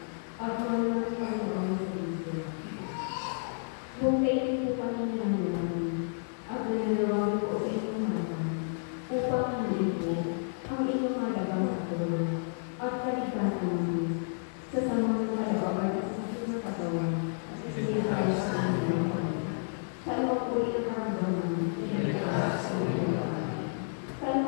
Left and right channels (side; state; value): right; silent; digital silence